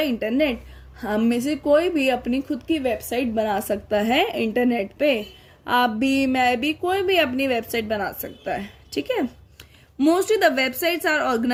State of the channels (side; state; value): both; identical; correlation 1.00